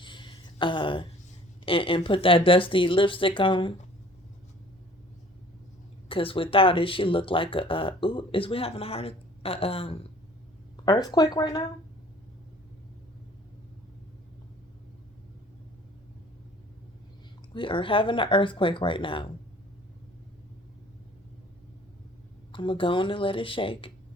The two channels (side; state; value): both; normal; correlation 0.52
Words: and put that dusty lipstick on. Because without it, she look like ooh, is we having a earthquake right now? We are having an earthquake right now. I'm going to go on and let it shake.